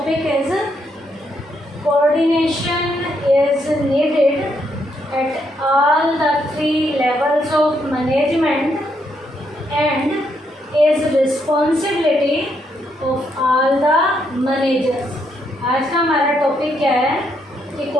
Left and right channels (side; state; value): both; normal; correlation 0.76